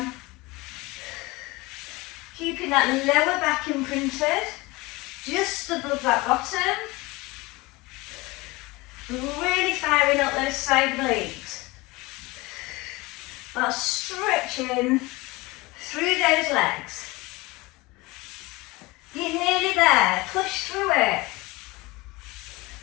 Keeping that lower back imprinted, just above that bottom. Really firing up those side obliques. While stretching through those legs. You're nearly there, push through it.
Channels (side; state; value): right; quieter; 22.6 dB